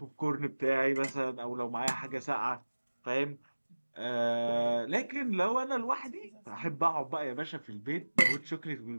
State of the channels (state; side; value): inverted; both; correlation -1.00